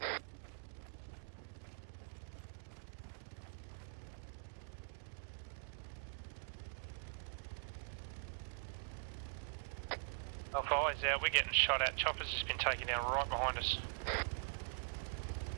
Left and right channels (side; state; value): left; silent; digital silence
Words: Alpha eyes out, we're getting shot at. Chopper's just been taken down right behind us.